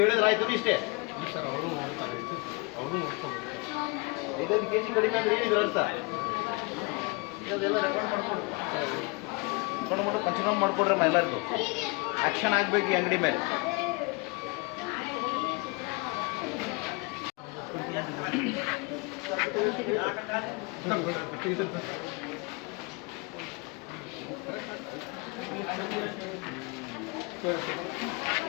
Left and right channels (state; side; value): quieter; right; 27.7 dB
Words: ಹೇಳಿದ್ರೆ ಆಯ್ತು ಇಷ್ಟೇ ಸರ್ ಅವರು ನೋಡ್ತಾರೆ ಅವರು ನೋಡ್ಕೊಂಡು 5 kg ಕಡಿಮೆ ಅಂದ್ರೆ ಏನಿದ್ರು ಅರ್ಥ ಇದೆಲ್ಲ ರೆಕಾರ್ಡ್ ಮಾಡ್ಕೊಡ್ರಿ ರೆಕಾರ್ಡ್ ಪಂಚನಾಮ ಮಾಡ್ಕೊಡ್ರಮ್ಮ ಎಲ್ಲರಿಗೂ ಆ್ಯಕ್ಷನ್ ಆಗಬೇಕು ಈ ಅಂಗಡಿ ಮೇಲೆ